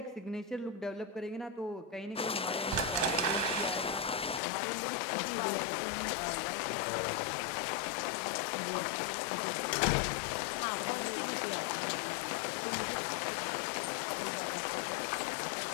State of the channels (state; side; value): drops out; right; at 4.4 s